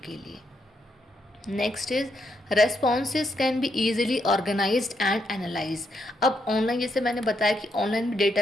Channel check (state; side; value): normal; both; correlation 0.78